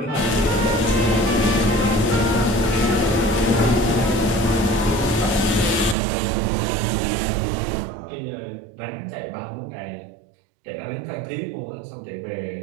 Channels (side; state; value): left; drops out; at 6.0 s